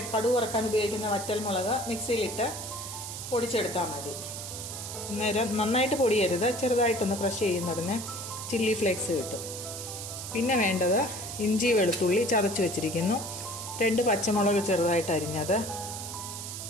കടുക് വറക്കാൻ ഉപയോഗിക്കുന്ന വറ്റൽമുളക് മിക്സിയിലിട്ട് പൊടിച്ചെടുത്താൽ മതി. അന്നേരം നന്നായിട്ട് പൊടിയരുത്, ചെറുതായിട്ടൊന്ന് ക്രഷ് ചെയ്യുന്നതിന് ചില്ലി ഫ്ലേക്സ് കിട്ടും. പിന്നെ വേണ്ടത് ഇഞ്ചി വെളുത്തുള്ളി ചതച്ച് വെച്ചിരിക്കുന്നു, 2 പച്ചമുളക് ചെറുതായിട്ട് അരിഞ്ഞത്,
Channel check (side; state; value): right; noise; hiss, 8 dB below the sound